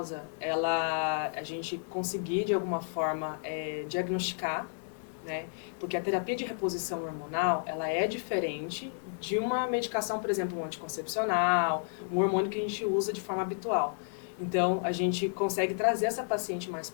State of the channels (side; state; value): right; silent; digital silence